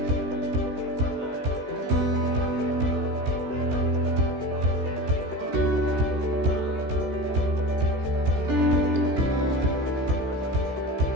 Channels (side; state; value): left; late; 15 ms